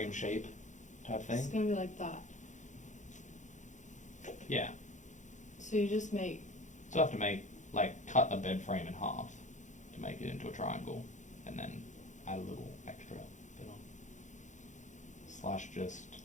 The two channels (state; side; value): late; right; 0.35 ms